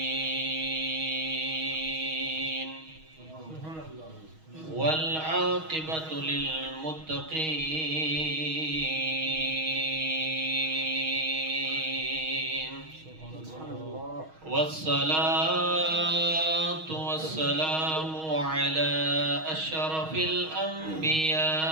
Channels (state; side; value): late; left; 6.3 ms